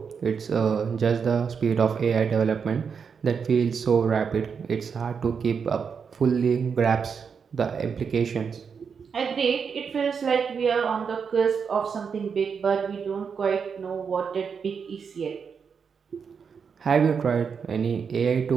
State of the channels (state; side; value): quieter; left; 6.3 dB